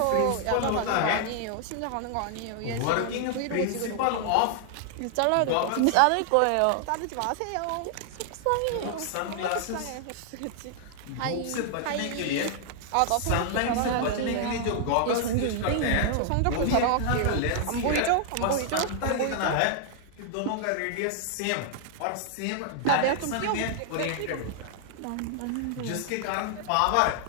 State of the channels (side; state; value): both; different; correlation 0.00